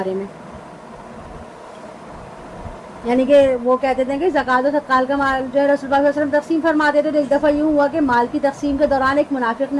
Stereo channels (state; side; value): identical; both; correlation 1.00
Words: میں، یعنی کہ وہ کہتے تھے کہ زکوٰۃ و صدقات کا مال جو ہے رسول اللہ صلی اللہ علیہ وسلم تقسیم فرماتے تھے، تو ایک دفعہ یوں ہوا کہ مال کی تقسیم کے دوران ایک منافق